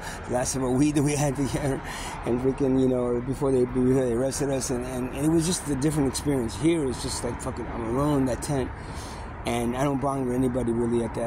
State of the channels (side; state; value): both; identical; correlation 1.00